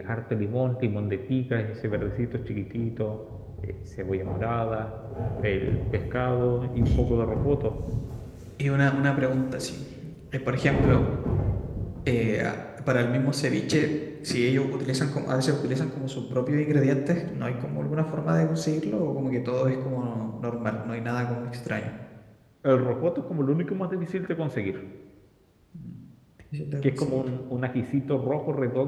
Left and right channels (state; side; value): identical; both; correlation 1.00